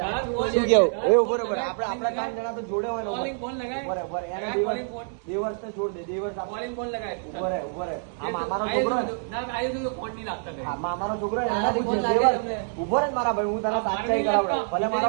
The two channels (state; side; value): silent; left; digital silence